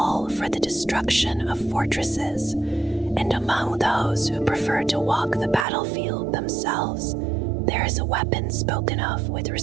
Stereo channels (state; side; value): drops out; left; at 5.7 s